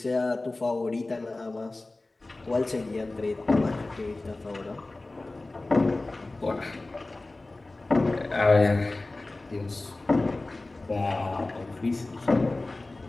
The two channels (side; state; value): right; quieter; 3.0 dB